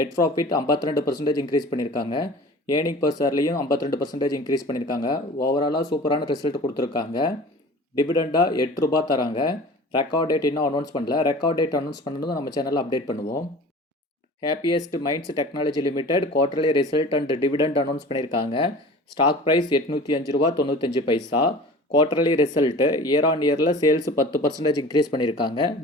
ப்ராஃபிட் 52% இன்க்ரீஸ் பண்ணியிருக்காங்க. ஏர்னிங் பர் ஷேர்லையும் 52% இன்க்ரீஸ் பண்ணியிருக்காங்க. ஓவராலாக சூப்பரான ரிசல்ட் கொடுத்துருக்காங்க. டிவிடெண்டாக 8 ரூபா தராங்க. ரெக்கார்ட் டேட் இன்னும் அனௌன்ஸ் பண்ணல. ரெக்கார்ட் டேட் அனௌன்ஸ் பண்ணதும் நம்ம சேனலில் அப்டேட் பண்ணுவோம். Happiest minds technology limited quarterly result and dividend announce பண்ணியிருக்காங்க. ஸ்டாக் ப்ரைஸ் 805 ரூபா 95 பைசா. குவார்டர்லி ரிசல்ட்டு இயர் ஆன் இயரில் சேல்ஸ் 10% இன்க்ரீஸ் பண்ணியிருக்காங்க.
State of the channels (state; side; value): normal; both; correlation 0.41